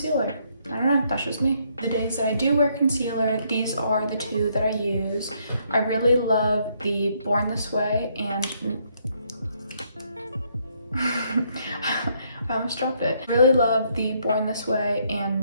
I don't know, that's just me. The days that I do wear concealer, these are the two that I use. I really love the Born This Way and I almost dropped it. Really love the Born This Way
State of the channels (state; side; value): inverted; both; correlation -0.71